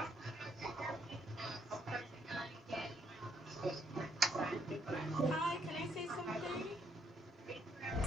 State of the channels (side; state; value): both; normal; correlation 0.72